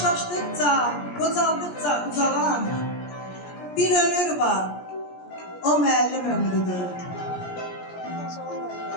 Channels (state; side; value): late; right; 17 ms